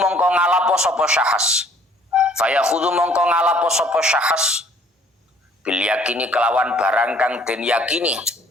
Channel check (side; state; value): both; normal; correlation 0.57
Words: ngalapo sapa syahas, fayakhudhu mongko ngalapo sapa syahas bil yakini kelawan barang kang den yakini.